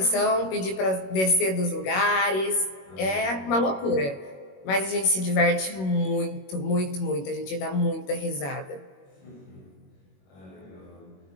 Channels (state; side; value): late; right; 21 ms